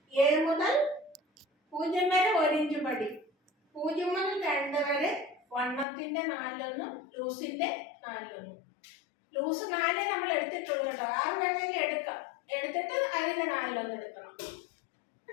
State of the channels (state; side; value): drops out; right; at 5.9 s